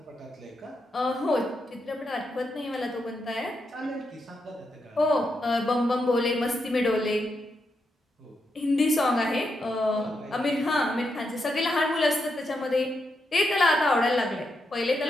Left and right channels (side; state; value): both; normal; correlation 0.83